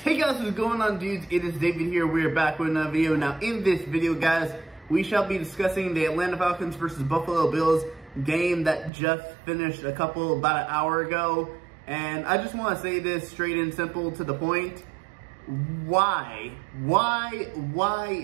Hey guys, what's going on, dudes? It is David here. We are back with another video. Now, in this video, guys, we shall be discussing the Atlanta Falcons versus Buffalo Bills game that just finished about an hour ago. And I just want to say this straight and simple to the point. Why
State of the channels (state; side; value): drops out; left; at 8.9 s